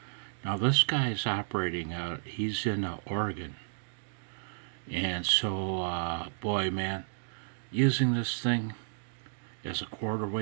Now this guy is operating out, he's in Oregon. And so, boy man, using this thing as a quarter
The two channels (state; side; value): silent; left; digital silence